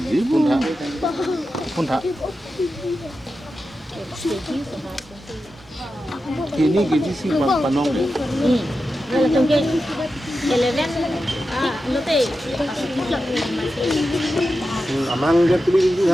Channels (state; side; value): normal; both; correlation 0.91